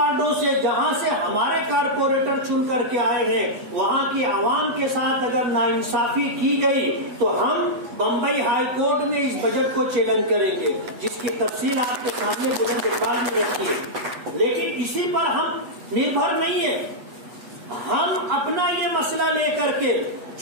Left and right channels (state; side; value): late; left; 8.2 ms